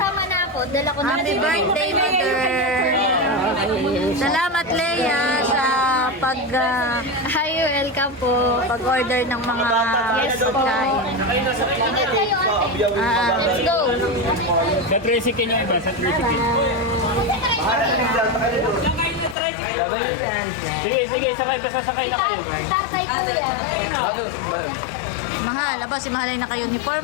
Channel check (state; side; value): drops out; right; at 19.4 s